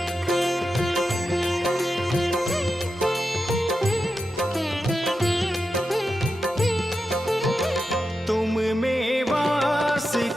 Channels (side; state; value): both; normal; correlation 0.89